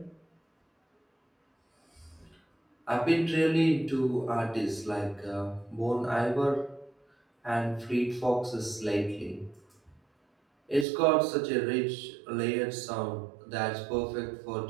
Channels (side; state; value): left; drops out; at 10.9 s